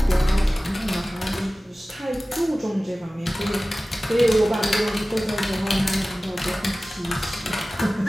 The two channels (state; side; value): normal; both; correlation 0.97